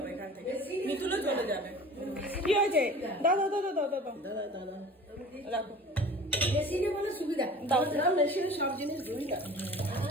এখান থেকে। মিতুলও চলে যাবে। কি হয়েছে? দাদা দাদা দাদা দাদা দাদা রাখো। মেশিনে বলে সুবিধা, মেশিনে সব জিনিস ধুই না।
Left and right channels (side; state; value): both; normal; correlation 0.42